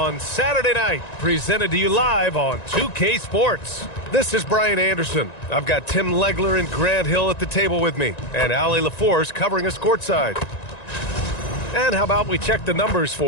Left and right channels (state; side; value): late; right; 1.9 ms